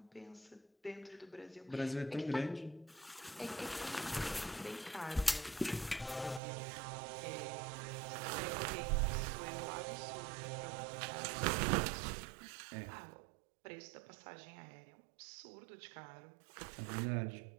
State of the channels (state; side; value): drops out; left; at 6.4 s